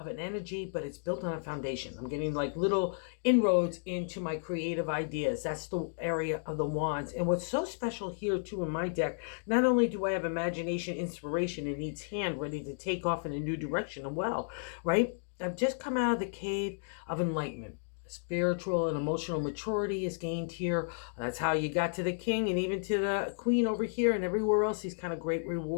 an energy, but it's built on a foundation. I'm getting like little inroads into my creative ideas. That's the area of the wands. And what's so special here too in my deck, not only do I have imagination, inspiration in each hand ready to take off in a new direction as well, right? I've just come out of the cave of enlightenment. Spiritual and emotional maturity is gained here. That's how you got to the king and even to the queen over here and everywhere else, these kind of great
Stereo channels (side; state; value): right; silent; digital silence